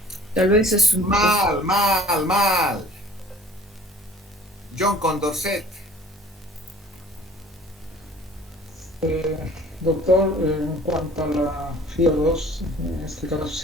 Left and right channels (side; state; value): both; normal; correlation 0.50